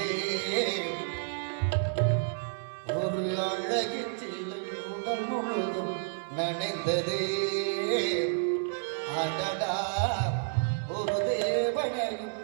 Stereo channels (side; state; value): left; silent; 58 dB below the other